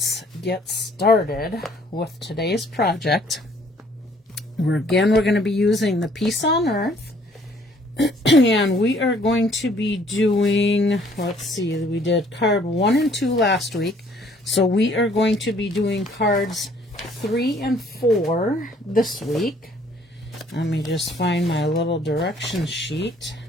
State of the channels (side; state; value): both; normal; correlation 0.61